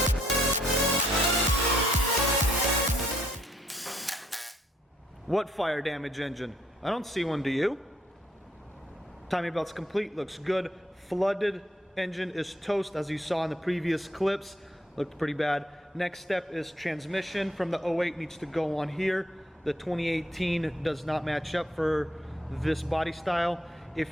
What fire damage engine? I don't see one, do you? Timing belt's complete, looks good. Flooded engine is toast, as you saw in the previous clips. Looked pretty bad. Next step is transmission from the 08 needs to go on here. The 2018 does not match up for this body style.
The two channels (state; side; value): normal; both; correlation 0.70